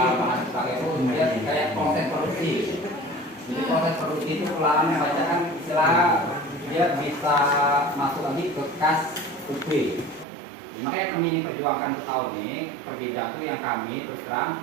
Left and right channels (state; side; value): drops out; left; at 10.2 s